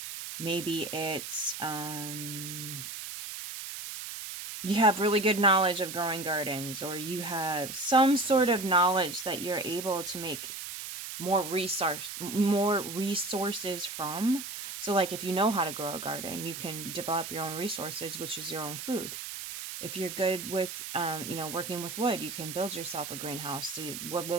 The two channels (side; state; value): right; noise; hiss, 8 dB below the sound